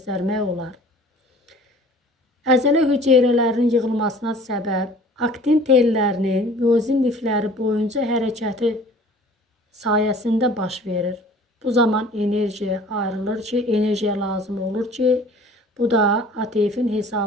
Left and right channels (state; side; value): normal; both; correlation 0.49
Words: olar. Əzələ hüceyrələrinin yığılmasına səbəb aktin tellərinin miozin lifləri boyunca hərəkəti sayəsində baş verir. Bu zaman enerji ayrılır ki, enerjiya lazım olur ki, bu da ATF-in